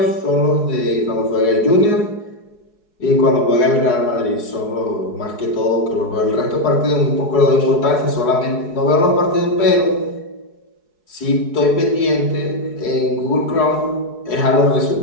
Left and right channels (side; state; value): right; late; 4.7 ms